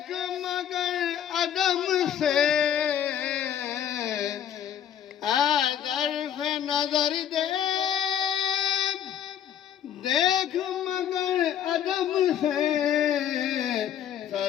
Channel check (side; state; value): right; quieter; 9.8 dB